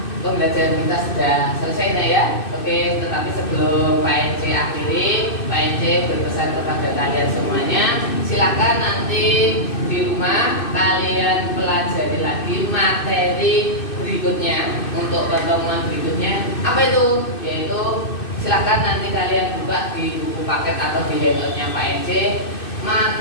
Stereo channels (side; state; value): right; late; 2.6 ms